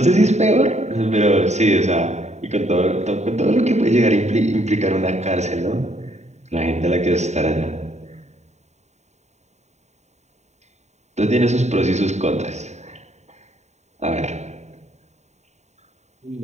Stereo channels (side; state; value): left; late; 0.33 ms